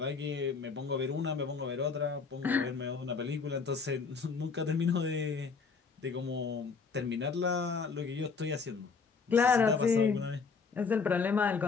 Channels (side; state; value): right; quieter; 5.1 dB